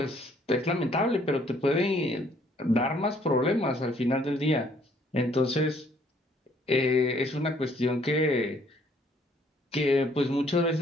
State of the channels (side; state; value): both; normal; correlation 0.63